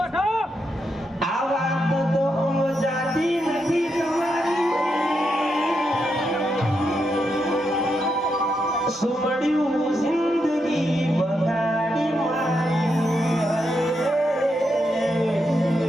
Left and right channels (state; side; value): normal; both; correlation 0.83